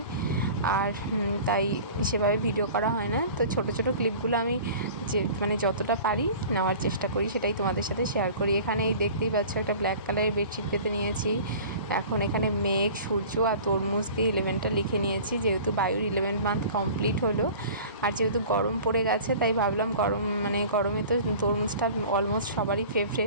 আর তাই সেভাবে ভিডিও করা হয় না। তো ছোট ছোট ক্লিপগুলো আমি যে যতটা পারি নেওয়ার চেষ্টা করি, সেটাই তোমাদের সাথে শেয়ার করি। এখানে এই দেখতেই পাচ্ছ একটা ব্ল্যাক কালারের বেডশিট পেতে নিয়েছি। এখন এখানে মেঘ, সূর্য আর তরমুজ দিয়ে 11টা লিখে নিয়েছি, যেহেতু বায়ুর 11 মান্থ কমপ্লিট হলো। আর যেহেতু গরম পড়ে গেছে তাই ভাবলাম গরমে তো তরমুজটা অলমোস্ট সবারই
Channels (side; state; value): both; inverted; correlation -0.42